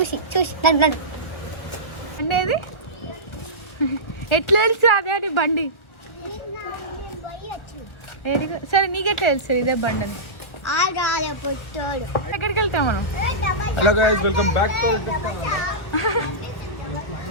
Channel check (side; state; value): right; late; 1.3 ms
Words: నడు నడు అండేది ఎట్లా తెలుసు అదే అని బండి? సరే నీకెట్లా తెలుసు ఇదే బండి అని? ఎక్కడికి వెళ్తాం మనం? Hello guys, welcome back to